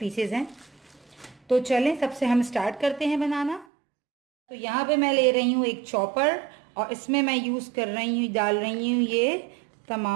हैं। तो चलें सबसे हम स्टार्ट करते हैं बनाना। तो यहाँ पे मैं ले रही हूँ एक चॉपर और इसमें मैं यूज़ कर रही हूँ, डाल रही हूँ ये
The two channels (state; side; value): drops out; left; at 3.7 s